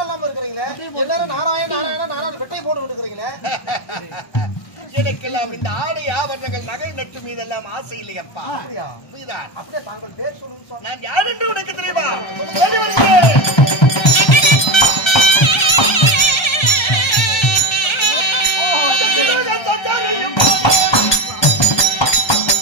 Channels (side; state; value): right; late; 1.3 ms